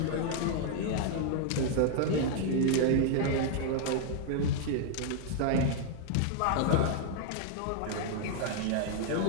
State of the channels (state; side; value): different; both; correlation 0.00